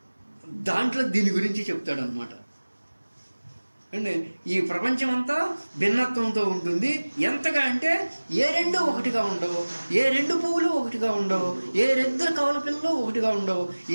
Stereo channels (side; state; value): both; inverted; correlation -1.00